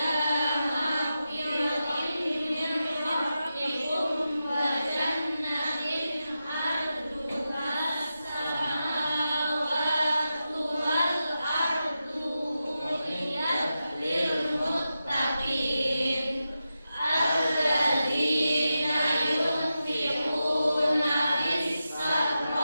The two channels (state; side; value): inverted; both; correlation -0.90